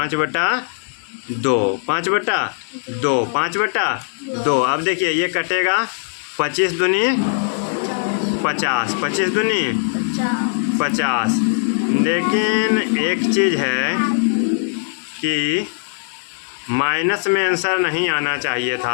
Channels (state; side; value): silent; right; digital silence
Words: 5/2। अब देखिए ये कटेगा 25 दूनी 50, 25 दूनी 50। लेकिन एक चीज़ है कि माइनस में आंसर नहीं आना चाहिए